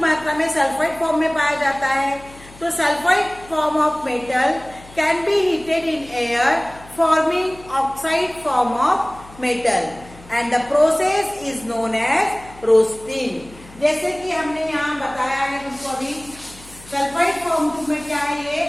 में सल्फाइड फॉर्म में पाया जाता है। तो sulphide form of metal can be heated in air forming oxide form of metal, and the process is known as roasting. जैसे कि हमने यहाँ बताया है तुमको अभी, सल्फाइड फॉर्म में क्या है, ये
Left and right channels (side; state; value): left; noise; hum, 21 dB below the sound